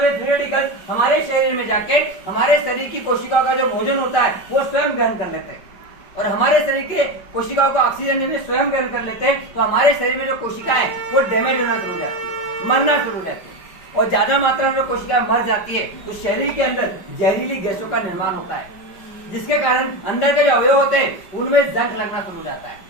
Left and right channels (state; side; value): late; right; 5.1 ms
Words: ये फ्री रेडिकल्स हमारे शरीर में जाके हमारे शरीर की कोशिकाओं का जो भोजन होता है वो स्वयं ग्रहण कर लेते हैं और हमारे शरीर के कोशिकाओं को ऑक्सीजन में स्वयं ग्रहण कर लेते हैं। तो हमारे शरीर में जो कोशिकाएं वो डैमेज होना शुरू हो जाती है, मरना शुरू हो जाती है और ज्यादा मात्रा में जो कोशिकाएं मर जाती है तो शरीर के अंदर जहरीली गैसों का निर्माण होता है, जिसके कारण अंदर के जो अवयव होते हैं उनमें जंग लगना शुरू हो जाता है